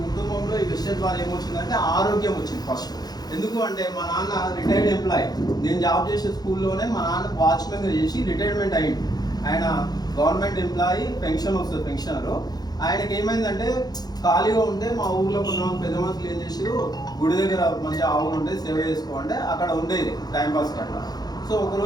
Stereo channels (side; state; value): right; late; 0.19 ms